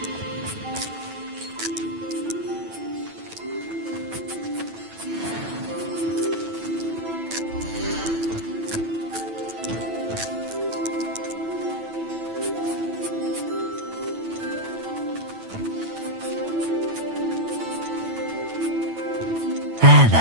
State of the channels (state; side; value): late; left; 9.1 ms